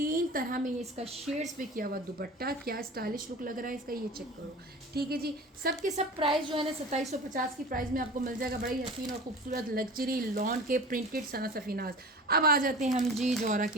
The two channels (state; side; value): normal; both; correlation 0.37